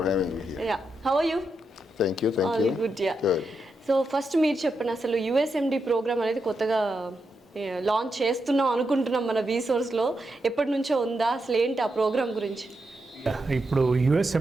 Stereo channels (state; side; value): normal; both; correlation 0.85